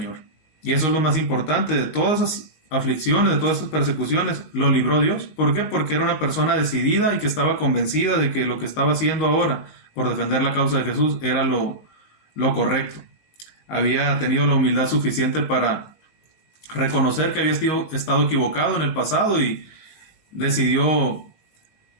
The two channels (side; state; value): right; late; 18 ms